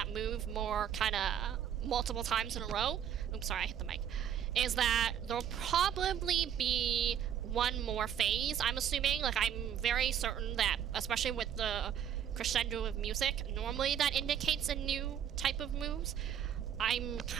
move more kind of multiple times in a row, oops, sorry, I hit the mic, is that there'll probably be one more phase, I'm assuming. Like, I'm very certain that, especially with the crescendo of music, normally that indicates a new type of moves. I'm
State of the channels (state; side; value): quieter; left; 9.2 dB